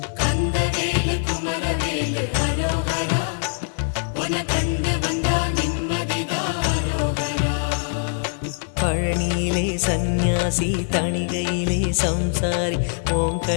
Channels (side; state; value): right; silent; digital silence